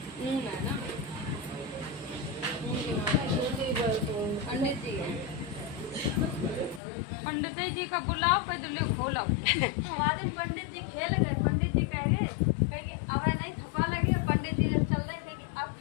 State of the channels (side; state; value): right; drops out; at 6.8 s